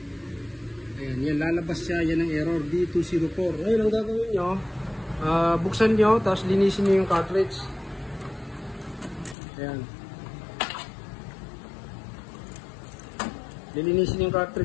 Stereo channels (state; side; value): drops out; right; at 9.3 s